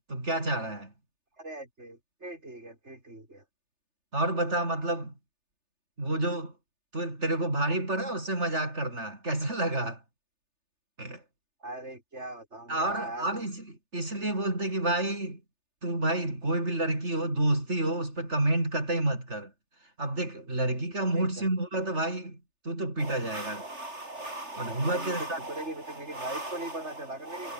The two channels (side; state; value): left; late; 3.3 ms